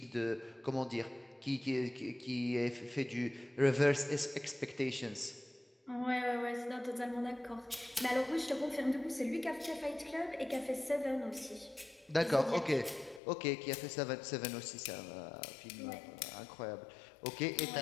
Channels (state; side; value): drops out; right; at 13.2 s